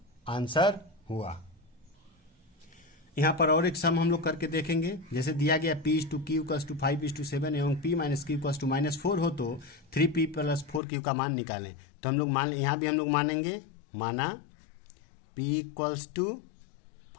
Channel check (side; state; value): right; drops out; at 10.8 s